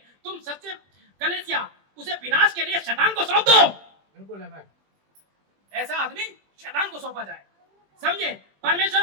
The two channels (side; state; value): left; late; 20 ms